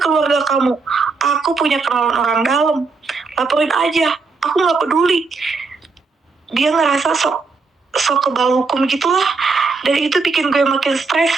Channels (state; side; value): quieter; left; 4.3 dB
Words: keluarga kamu, aku punya kenalan orang dalam, laporin aja, aku gak peduli. Dia ngerasa sok kebal hukum gitulah. Dan itu bikin gue makin stres,